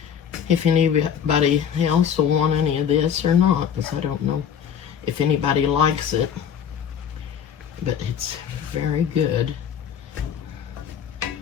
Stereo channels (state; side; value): quieter; right; 8.2 dB